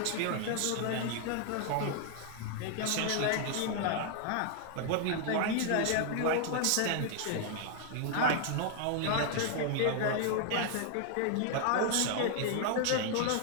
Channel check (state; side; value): different; both; correlation 0.00